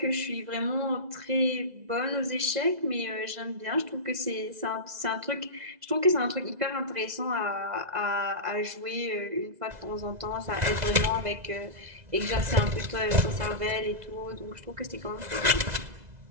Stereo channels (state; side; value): late; left; 2.0 ms